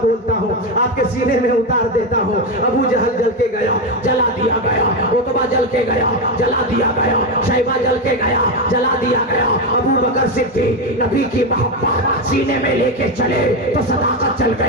हूँ, आपके सीने में उतार देता हूँ। अबू जहल जल के गया, जला दिया गया। उतबा जल के गया, जला दिया गया। शैबा जल के गया, जला दिया गया। अबू बकर सिद्दीक नबी की मोहब्बत सीने में लेके चले तो सदाकत चल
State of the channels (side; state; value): both; normal; correlation 0.11